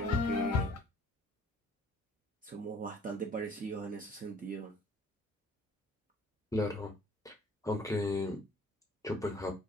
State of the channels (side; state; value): both; normal; correlation 0.55